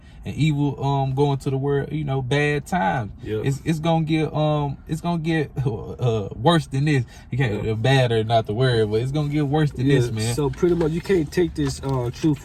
and evil going to the world. You know, bad times. It's gonna get worse than this. You can't bad or not the word, but it's gonna get worse than this, man. So pretty much, you can't take this truth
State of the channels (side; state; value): both; identical; correlation 1.00